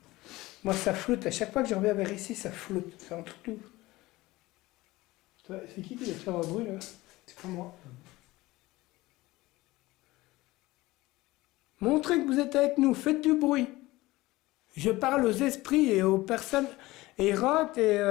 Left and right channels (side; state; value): right; quieter; 19.3 dB